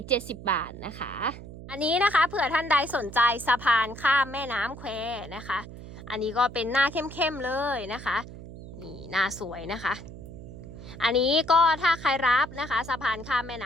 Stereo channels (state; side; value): noise; right; hum, 13 dB below the sound